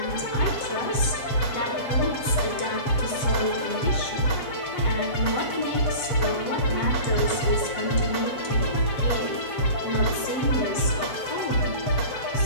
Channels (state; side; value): late; right; 7.7 ms